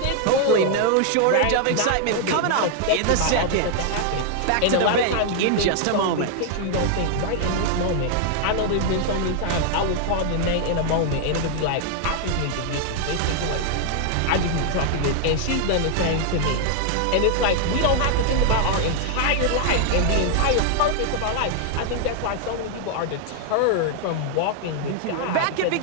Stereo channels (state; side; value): different; both; correlation 0.00